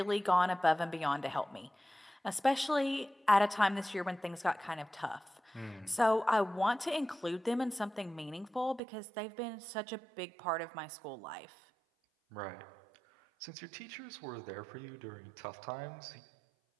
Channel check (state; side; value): drops out; left; at 8.8 s